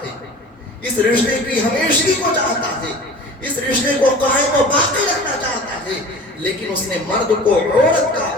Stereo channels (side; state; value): both; normal; correlation 0.40